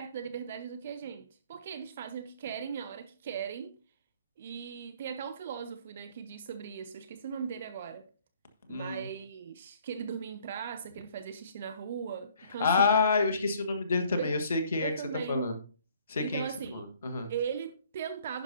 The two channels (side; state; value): both; inverted; correlation -0.59